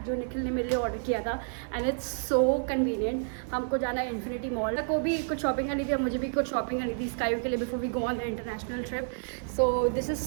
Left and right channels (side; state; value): left; silent; digital silence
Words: जो निखिल ने मेरे लिए ऑर्डर किया था and it's so convenient. हमको जाना है इन्फिनिटी मॉल को भी कुछ शॉपिंग करनी थी और मुझे भी कुछ शॉपिंग करनी थी स्काई के लिए before we go on the international trip. So this is